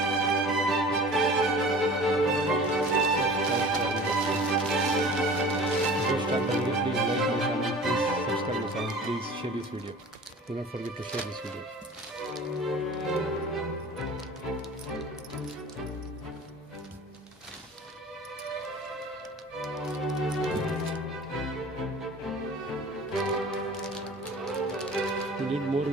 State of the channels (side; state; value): both; normal; correlation 0.42